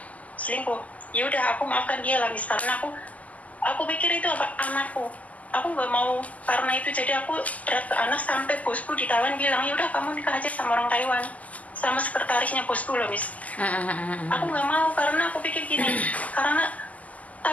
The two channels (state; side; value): late; right; 0.074 ms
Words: selingkuh. Ya udah, aku maafkan dia lah, Miss, karena aku pikir itu anakku. Aku nggak mau karena itu jadi aku berat ke anak, sampai bosku di Taiwan bilang ya udah kamu nikah aja sama orang Taiwan, sama sekretarisnya bosku loh, Miss. Aku nggak mau karena aku pikir gini, karena